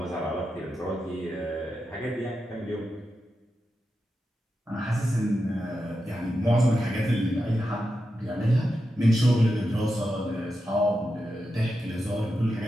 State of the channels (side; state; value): both; normal; correlation 0.88